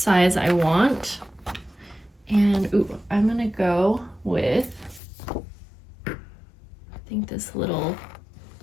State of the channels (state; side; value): drops out; right; at 5.0 s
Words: I want. And ooh, I'm gonna go with, I think this little